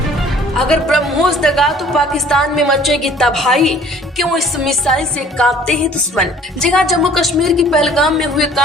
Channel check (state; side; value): normal; both; correlation 0.52